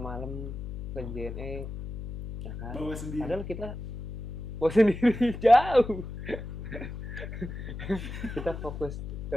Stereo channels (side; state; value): left; noise; hum, 7 dB below the sound